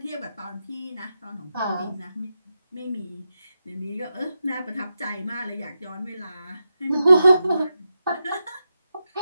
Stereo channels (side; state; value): both; inverted; correlation -0.88